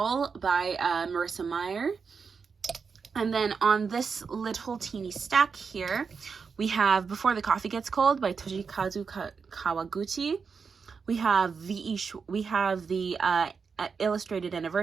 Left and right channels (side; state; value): left; quieter; 5.6 dB